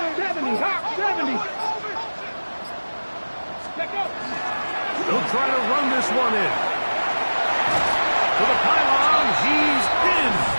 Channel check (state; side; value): inverted; both; correlation -1.00